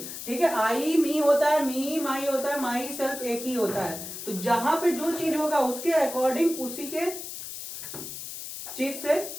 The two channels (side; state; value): left; noise; hiss, 9 dB below the sound